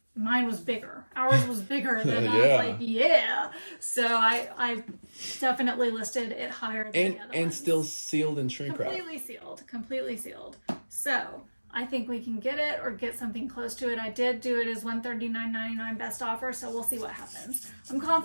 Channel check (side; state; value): both; inverted; correlation -1.00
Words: mine was bigger. Ours was bigger than I was like, yeah. So I definitely listed it higher than the other and ones. still sealed in shrink wrap. Completely sealed. So I think we can get it or get something close to it. I did do it as $139.99 best offer, so we'll see what happens. I'm